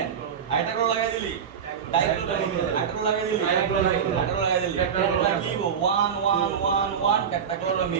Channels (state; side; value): quieter; left; 7.5 dB